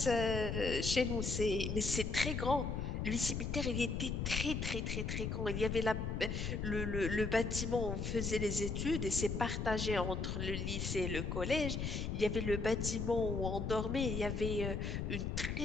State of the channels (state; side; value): noise; left; rumble, 2 dB below the sound